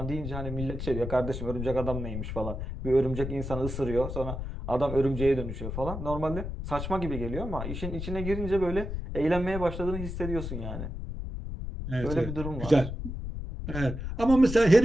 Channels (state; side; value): noise; left; rumble, 6 dB below the sound